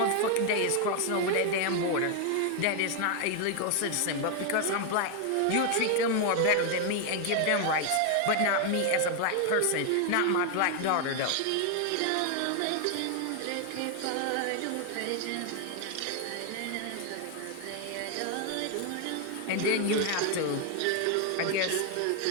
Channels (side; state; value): both; different; correlation 0.00